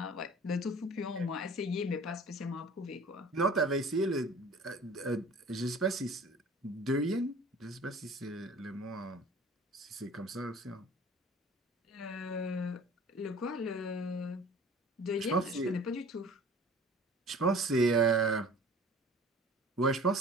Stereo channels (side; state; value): both; normal; correlation 0.45